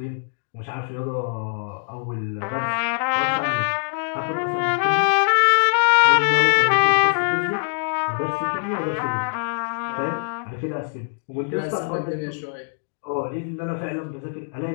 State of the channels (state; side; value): silent; right; digital silence